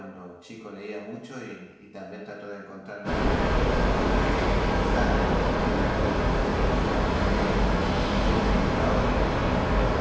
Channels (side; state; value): both; identical; correlation 1.00